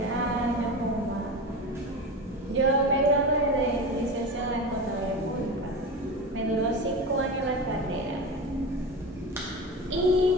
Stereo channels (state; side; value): normal; both; correlation 0.26